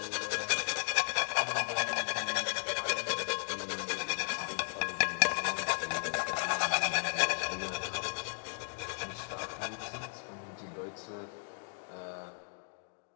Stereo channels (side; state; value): right; silent; 54 dB below the other